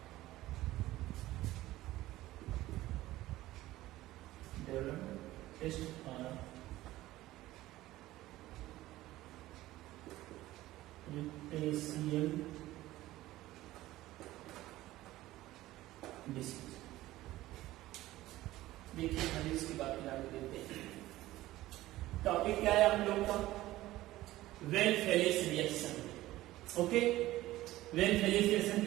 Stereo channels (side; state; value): left; quieter; 16.3 dB